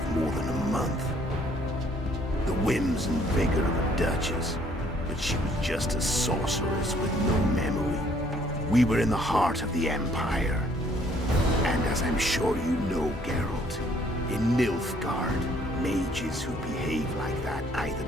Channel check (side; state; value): both; normal; correlation 0.63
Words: more than a month. The whims and vigor of a duchess, but she was just a sorceress with no memory. We were in the heart of the Empire. And as I'm sure you know, Geralt, in Nilfgaard, mages who behave like that either